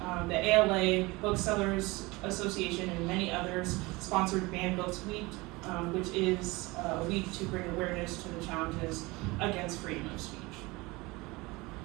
The ALA, Booksellers Association, and many others sponsored Banned Books Week, which is a week to bring awareness to the challenges against freedom of speech.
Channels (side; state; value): left; quieter; 23.1 dB